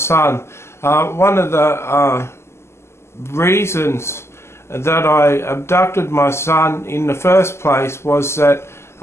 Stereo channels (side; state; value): right; late; 0.13 ms